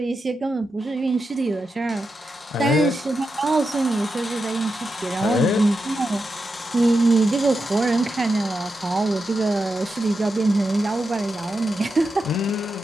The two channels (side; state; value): both; normal; correlation 0.88